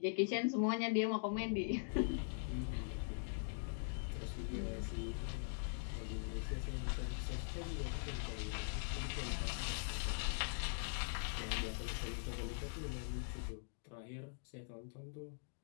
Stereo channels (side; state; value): right; silent; digital silence